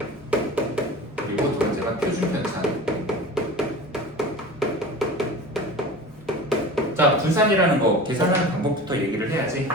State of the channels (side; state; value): both; normal; correlation 0.36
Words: 그리고 두 번째가 표준 편차. 자, 분산이라는 거 계산하는 방법부터 얘기를 해야지.